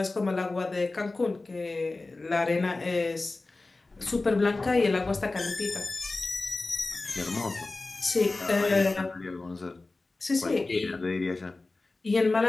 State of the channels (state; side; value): quieter; right; 3.3 dB